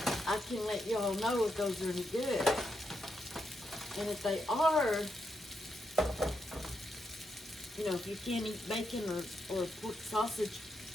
I can let y'all know if those are any good. And if they are, you know, if you can't eat bacon or pork sausage,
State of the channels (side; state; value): both; normal; correlation 0.83